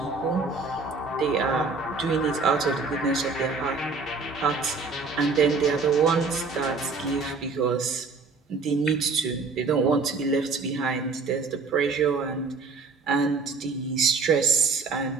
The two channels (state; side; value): quieter; left; 4.3 dB